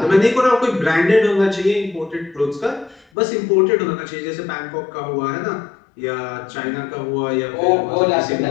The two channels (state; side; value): drops out; right; at 3.1 s